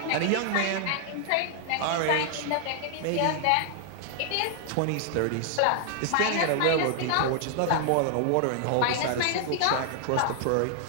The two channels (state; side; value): different; both; correlation 0.00